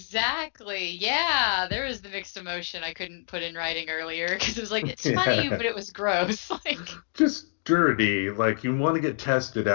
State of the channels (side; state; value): right; silent; digital silence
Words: Yeah, there was the mixed emotion I couldn't put in writing earlier because it was like it's funny, yeah, but it was gross. Like, just dirty. Like you want to get tested